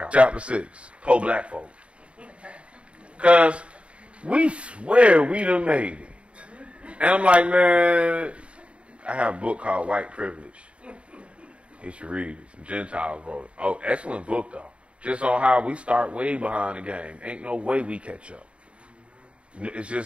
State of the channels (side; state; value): left; late; 0.060 ms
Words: Chapter 6. Poor black folk. Because we swear we done made it. And I'm like, man, I have a book called White Privilege. You should read it. Some Gentiles wrote it. Oh, excellent book, though. Just on how we start way behind the game. Ain't no way we catch up. It's